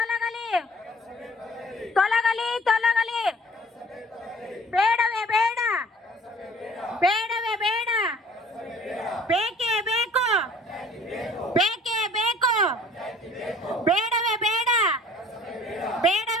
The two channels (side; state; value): both; normal; correlation 0.52